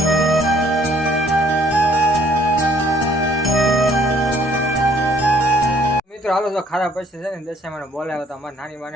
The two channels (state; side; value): normal; both; correlation 0.61